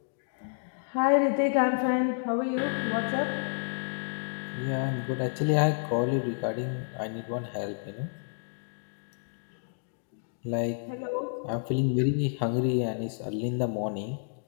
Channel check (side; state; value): right; silent; digital silence